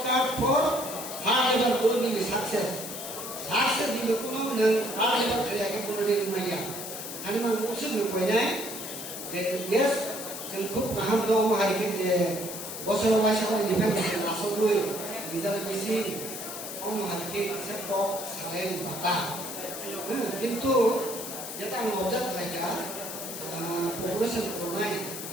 for hard labour বলবি সাকসেস সাকসেস দিলে কোনো নং হার্ড লেবার করে কোনো দিন মাইয়া আমি মান উসুল কইনাय yes जों খুব गाहाम दं हारिके जे बोसोराव वाइसाव निफ्राय नासबो निजा बेसि अम हारिके से पक साले बाता किंतु जेटा आं अबजार्भ खालाया पपुलेशन करनाय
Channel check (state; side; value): noise; left; hiss, 8 dB below the sound